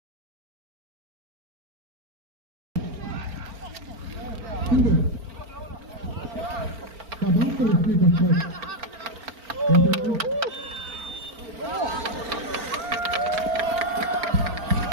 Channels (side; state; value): left; late; 4.4 ms